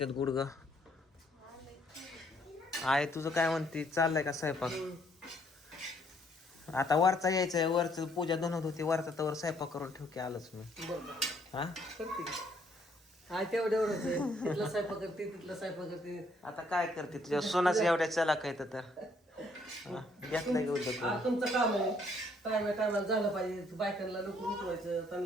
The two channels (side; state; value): both; normal; correlation 0.67